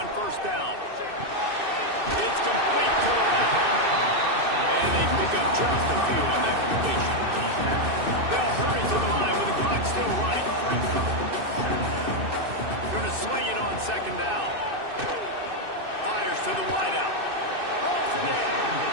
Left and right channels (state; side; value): late; left; 2.6 ms